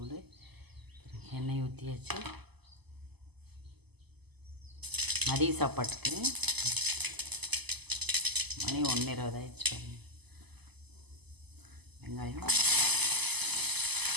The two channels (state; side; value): late; left; 0.99 ms